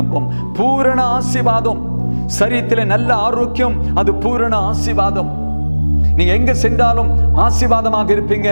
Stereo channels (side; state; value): both; inverted; correlation -1.00